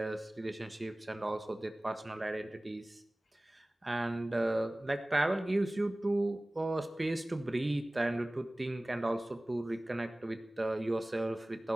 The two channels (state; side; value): normal; both; correlation 0.98